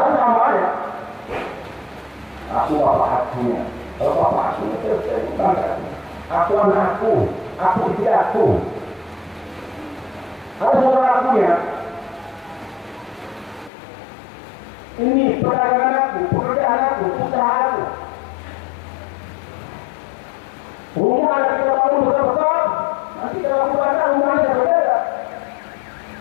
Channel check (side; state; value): right; drops out; at 13.7 s